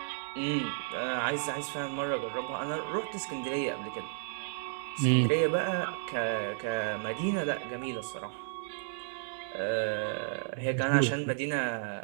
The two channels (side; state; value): left; silent; 56 dB below the other